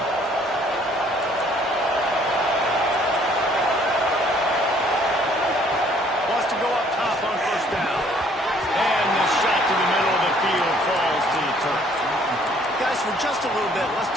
For just a little bit, let's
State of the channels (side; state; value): both; normal; correlation 0.61